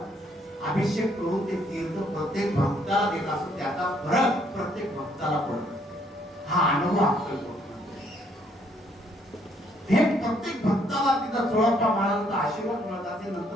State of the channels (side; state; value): both; normal; correlation 0.68